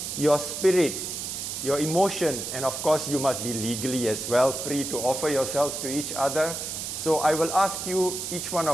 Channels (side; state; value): right; noise; hiss, 5 dB below the sound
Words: your spirit, your emotion, and of course, you must be legally as well free to offer yourselves to each other. So I will ask you, each one